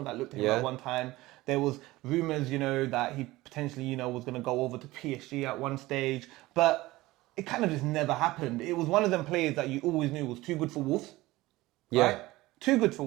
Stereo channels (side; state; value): left; quieter; 18.9 dB